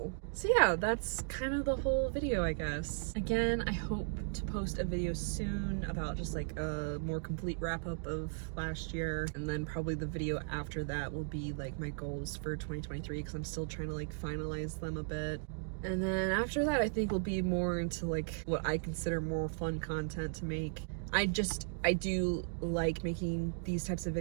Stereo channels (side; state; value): left; silent; digital silence